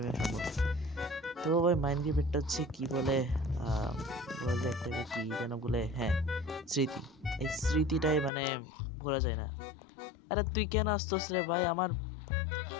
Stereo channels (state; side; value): drops out; right; at 8.3 s